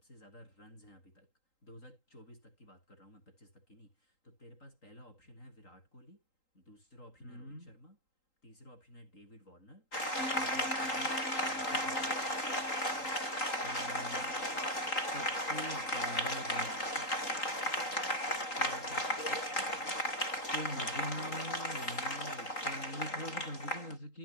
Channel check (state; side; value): late; right; 3.8 ms